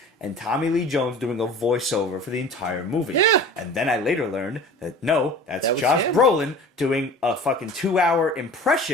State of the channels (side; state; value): both; normal; correlation 0.41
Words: and Tommy Lee Jones doing a voiceover for the entire movie. Yeah. And then I later learned that no, that's That was Josh him. Brolin doing a fucking 2-hour